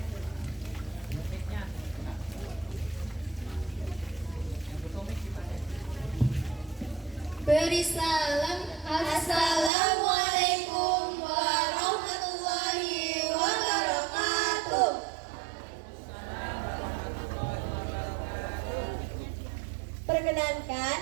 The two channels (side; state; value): left; drops out; at 9.7 s